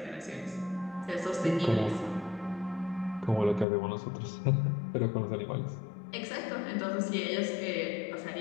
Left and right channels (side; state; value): right; drops out; at 3.7 s